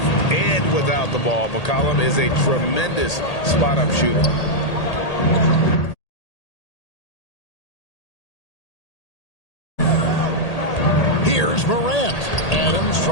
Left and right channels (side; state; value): right; late; 1.8 ms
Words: and without the ball. McCollum is a tremendous spot-up shooter. Here's Morant. Adams